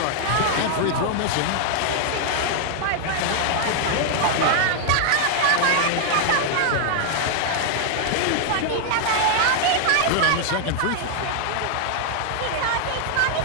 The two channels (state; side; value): different; both; correlation 0.00